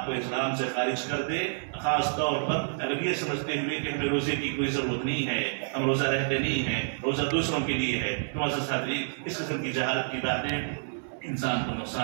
کو اسلام سے خارج کر دے، خاص طور پر اگر یہ سمجھتے ہوئے کہ ہمیں روزے کی کوئی ضرورت نہیں ہے، ہم روزہ رہتے نہیں ہیں، روزہ دوسروں کے لیے ہے. معزز حاضرین، اس قسم کی جہالت کی باتیں انسان کو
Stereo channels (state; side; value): silent; left; 59 dB below the other